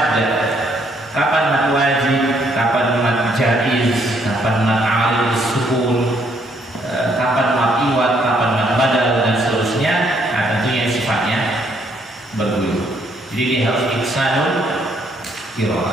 kapan mad wajib, kapan mad jaiz, kapan mad alil sukun, kapan mad iwat, kapan mad badal dan seterusnya. Nah tentunya sifatnya berguyur. Jadi dia harus ihsanul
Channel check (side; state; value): both; normal; correlation 0.69